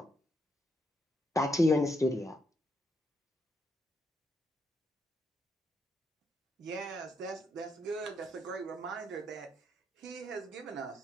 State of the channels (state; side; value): normal; both; correlation 0.78